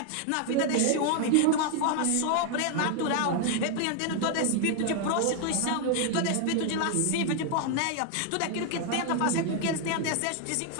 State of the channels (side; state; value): both; different; correlation 0.00